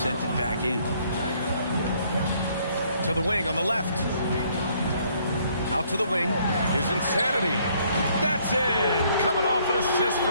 sent it back in. To the wing on the left. Out to the wing. Here's Insanity. That's in. Coming off an assist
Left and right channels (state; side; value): inverted; both; correlation -0.65